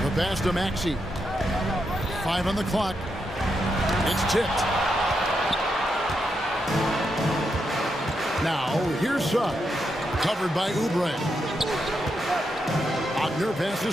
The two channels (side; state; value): both; normal; correlation 0.83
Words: pass to Maxey. 5 on the clock. It's tipped. Now here's Suggs. Covered by Oubre. Wagner passes